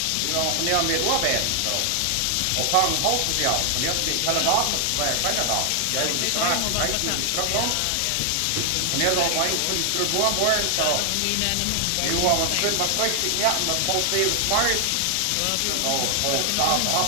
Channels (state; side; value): different; both; correlation 0.00